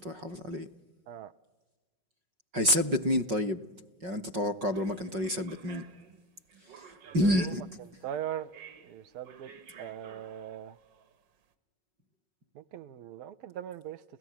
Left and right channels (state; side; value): late; left; 5.4 ms